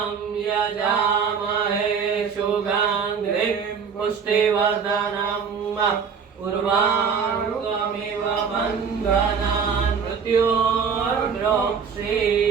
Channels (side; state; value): left; quieter; 6.3 dB